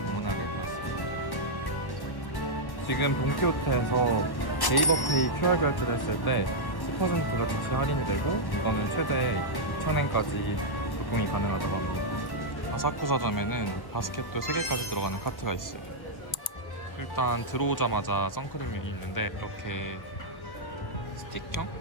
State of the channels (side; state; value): right; late; 1.1 ms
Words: 되었습니다. 지금 돈키호테에서 네이버페이 QR 결제를 했을 때 10%가 즉시 할인이 되고 이거는 최대 2,000엔까지 조금이 가능하다고 합니다. 아사쿠사점에는 바스켓도 3개까지 들어가는 카트가 있어요. 일단 들어오자마자 선크림이 있는데 이렇게